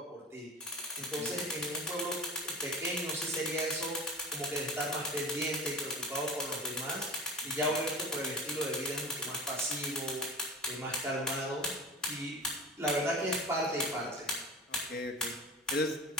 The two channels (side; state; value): both; normal; correlation 0.33